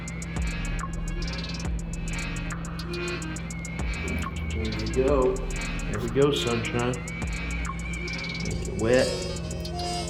Go. There we go, sunshine. Make it wet.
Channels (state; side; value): identical; both; correlation 1.00